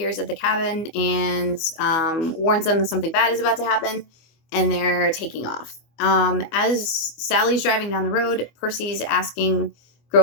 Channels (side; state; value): right; late; 24 ms